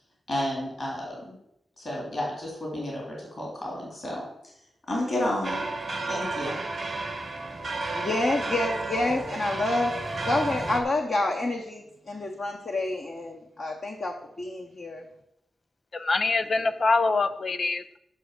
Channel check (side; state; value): both; normal; correlation 0.88